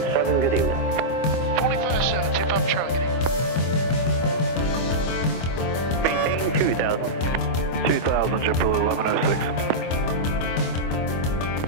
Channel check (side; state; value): right; late; 25 ms